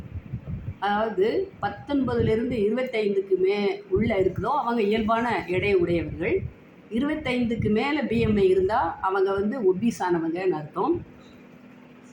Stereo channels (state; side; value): identical; both; correlation 1.00